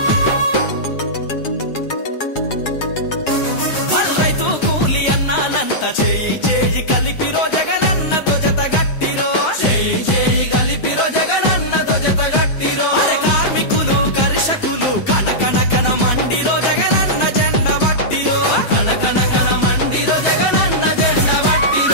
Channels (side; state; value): right; late; 7.6 ms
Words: రైతు కూలి అన్నానంత చేయి చేయి కలిపిరో జగనన్నతో జత గట్టిరో చేయి చేయి కలిపిరో జగనన్నతో జత గట్టిరో అరే కార్మికులు కర్షకులు కన కన కన మండిరో జగనన్న జెండ బట్టిరో కన కన కన మండిరో జగనన్న జెండ